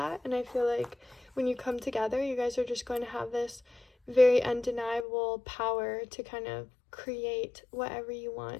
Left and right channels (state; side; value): drops out; right; at 5.1 s